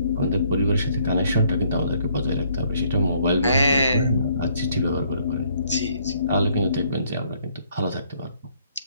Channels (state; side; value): inverted; both; correlation -0.66